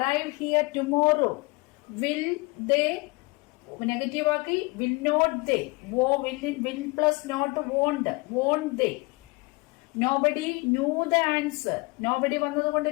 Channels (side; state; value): right; quieter; 26.7 dB